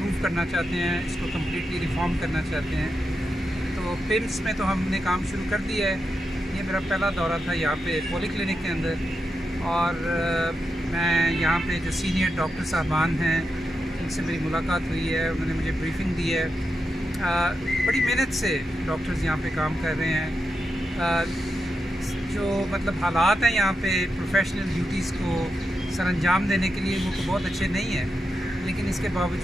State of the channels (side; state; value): both; normal; correlation 0.87